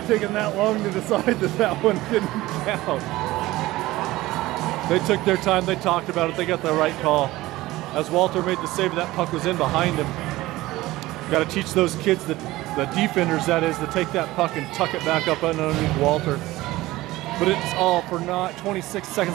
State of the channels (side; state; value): left; quieter; 17.9 dB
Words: taken that long to decide that one didn't count. They took their time. They talked about it. They got the right call. As Walter made the save, that puck was in behind him. Got to teach those kids, the defenders that is, to take that puck and tuck it back up underneath Walter. But it's all for naught. 26